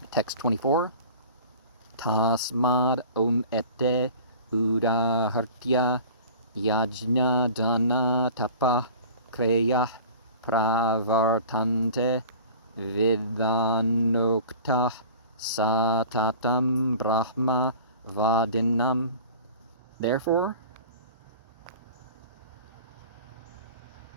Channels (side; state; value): both; inverted; correlation -0.42